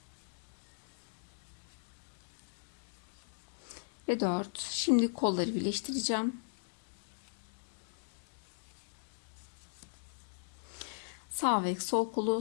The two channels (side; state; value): right; silent; digital silence